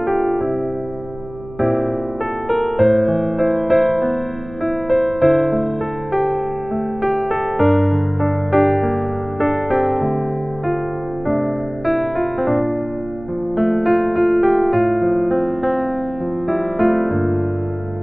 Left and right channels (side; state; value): right; noise; hum, 18 dB below the sound